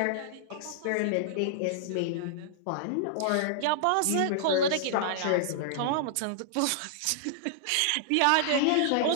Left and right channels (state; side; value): different; both; correlation -0.01